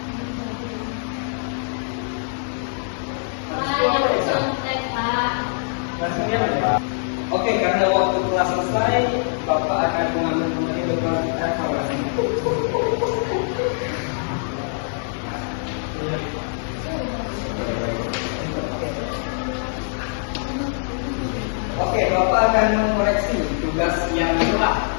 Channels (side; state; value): right; silent; digital silence